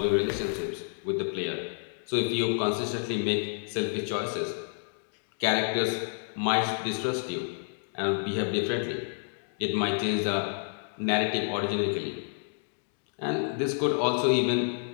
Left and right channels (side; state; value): right; silent; digital silence